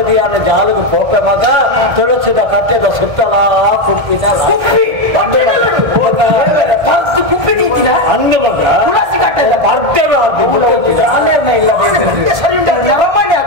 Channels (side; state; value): left; late; 1.5 ms